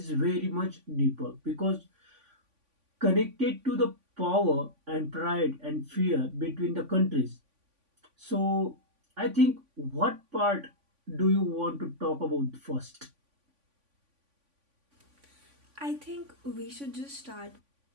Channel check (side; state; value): left; late; 3.5 ms